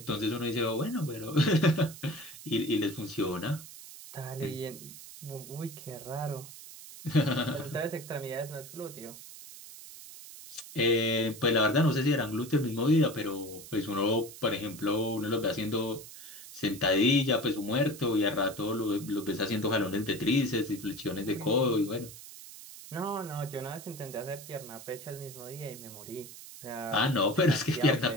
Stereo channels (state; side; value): noise; right; hiss, 15 dB below the sound